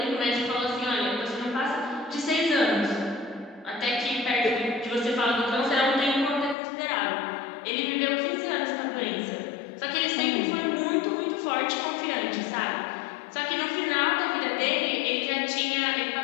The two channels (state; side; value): drops out; right; at 6.6 s